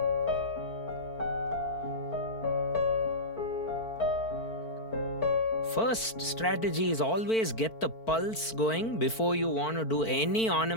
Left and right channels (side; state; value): right; late; 4.5 ms